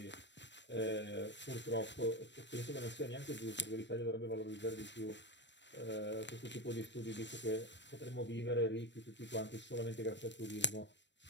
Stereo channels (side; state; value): right; late; 0.53 ms